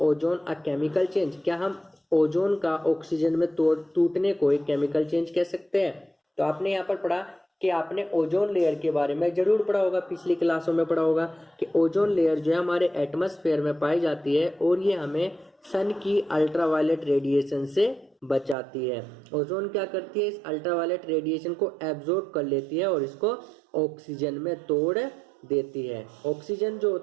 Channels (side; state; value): left; drops out; at 18.6 s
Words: ozone a chemical change? क्या हम ओजोन का ऑक्सीजन में टूटने को एक केमिकल चेंज कह सकते हैं? तो आपने यहाँ पर पढ़ा कि आपने ओजोन लेयर के बारे में जरूर पढ़ा होगा, पिछली क्लासों में पढ़ा होगा कि ओजोन लेयर जो है हमारे एटमॉस्फेयर में पाई जाती है और ये हमें सन की अल्ट्रावायलेट रेडिएशन से बचाती है। ओजोन क्या करती है? इस अल्ट्रावायलेट रेडिएशन को एब्जॉर्ब कर लेती है और इसको ऑक्सीजन में तोड़ देती है। ऑक्सीजन जो